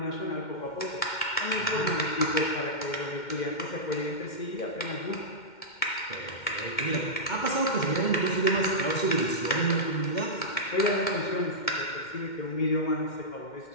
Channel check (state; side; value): late; right; 2.1 ms